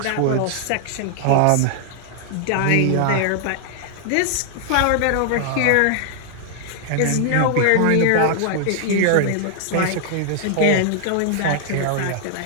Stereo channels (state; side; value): different; both; correlation 0.00